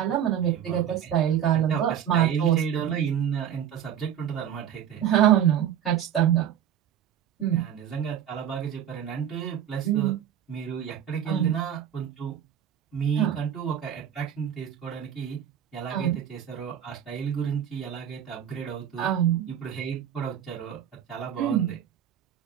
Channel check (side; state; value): left; quieter; 9.7 dB